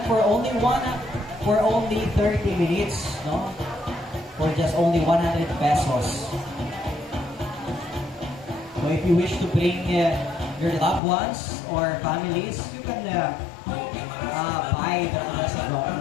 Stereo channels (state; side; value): drops out; right; at 11.0 s